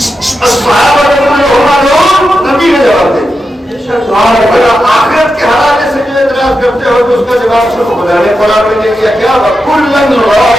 الصحابہ کلھم عدو، نبی نے جواب دے دیا۔ آخرت کے حوالے سے جو اعتراض کرتے ہو تو اس کا جواب صرف خدا نے قرآن میں دے دیا، کیا وَكُلًّا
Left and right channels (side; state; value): both; normal; correlation 0.89